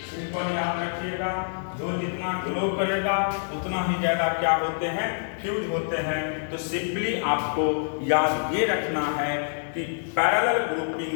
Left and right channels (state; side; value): silent; right; 61 dB below the other